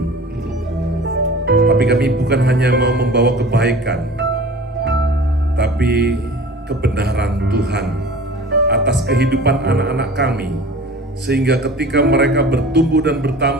Tapi kami bukan hanya mau membawa kebaikan, tapi kebenaran Tuhan atas kehidupan anak-anak kami, sehingga ketika mereka bertumbuh dan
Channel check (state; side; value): normal; both; correlation 0.41